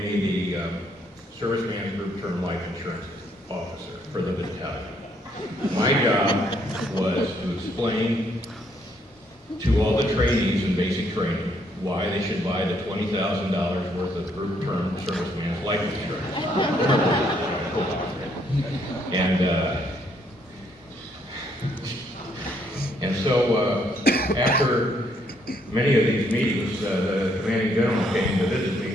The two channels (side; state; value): both; normal; correlation 0.70